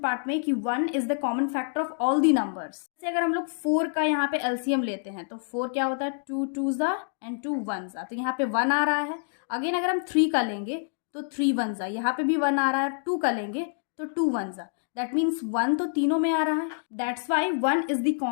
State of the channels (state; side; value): silent; right; digital silence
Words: में कि 1 is the common factor of all the numbers. जैसे अगर हम लोग 4 का यहाँ पे एलसीएम लेते हैं, तो 4 क्या होता है? 2 2 एंड 2 1। तो यहाँ पे 1 आ रहा है। अगेन अगर हम 3 का लेंगे तो 3 1। यहाँ पे भी 1 आ रहा है। 2 का लेंगे तो 2 1। दैट मीन्स 1 तो तीनों में आ रहा है, that's why 1 is the